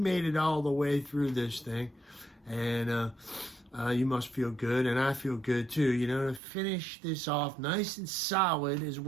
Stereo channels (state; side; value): drops out; left; at 6.4 s